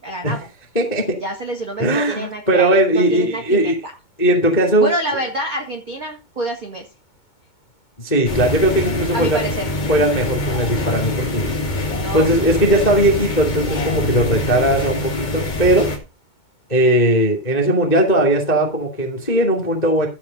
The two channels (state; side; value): late; right; 2.2 ms